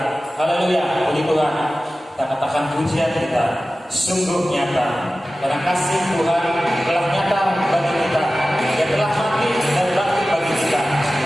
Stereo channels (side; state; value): both; normal; correlation 0.96